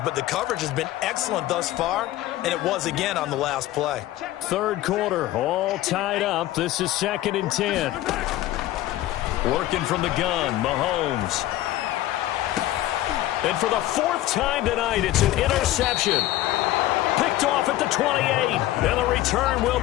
but the coverage has been excellent thus far, and it was again on the last play. Third quarter, all tied up. This is second and 10. Working from the gun, Mahomes. And for the fourth time tonight, it's an interception. Picked off at the 28, and the return will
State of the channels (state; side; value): quieter; right; 15.0 dB